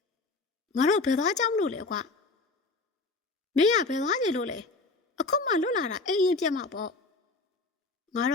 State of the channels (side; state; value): right; quieter; 3.5 dB